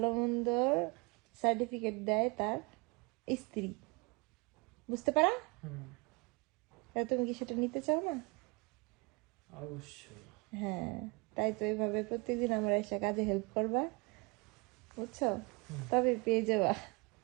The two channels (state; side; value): quieter; left; 29.3 dB